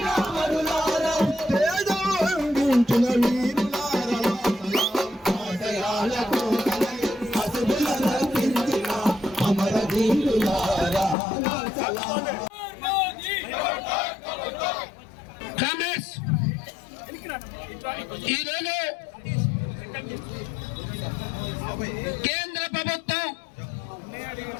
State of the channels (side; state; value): right; drops out; at 11.2 s